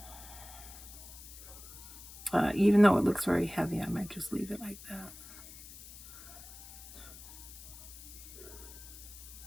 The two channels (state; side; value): noise; left; hiss, 15 dB below the sound